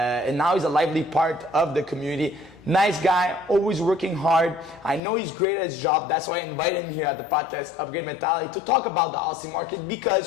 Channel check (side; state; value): right; drops out; at 5.0 s